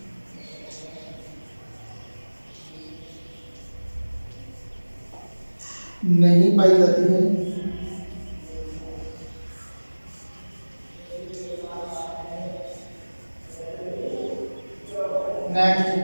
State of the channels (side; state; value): both; inverted; correlation -1.00